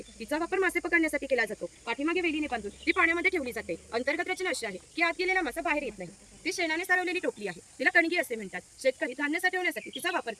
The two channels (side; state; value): both; identical; correlation 1.00